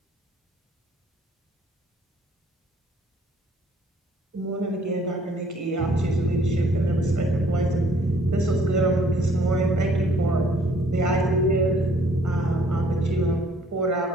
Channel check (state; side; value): normal; both; correlation 0.60